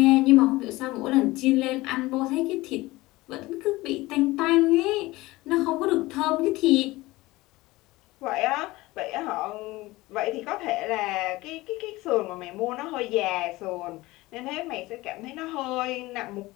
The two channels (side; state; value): right; quieter; 19.8 dB